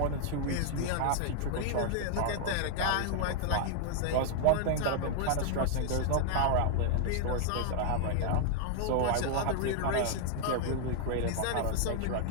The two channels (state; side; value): different; both; correlation 0.00